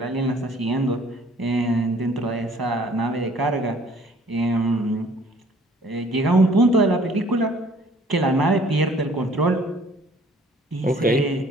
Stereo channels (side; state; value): both; normal; correlation 0.56